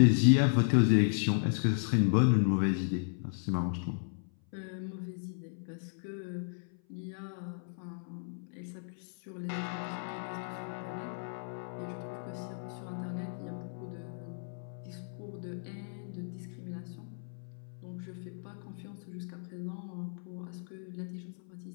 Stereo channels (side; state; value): right; silent; 55 dB below the other